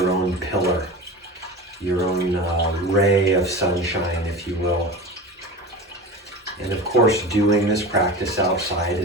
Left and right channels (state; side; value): normal; both; correlation 0.30